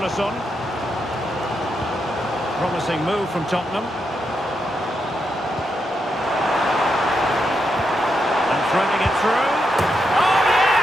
Promising move from Tottenham. And threading it through. Oh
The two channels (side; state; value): both; normal; correlation 0.83